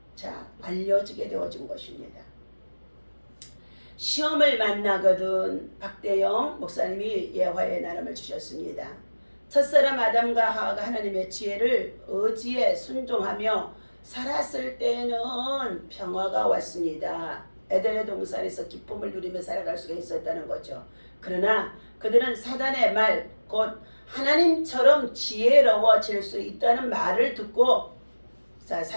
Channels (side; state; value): both; inverted; correlation -1.00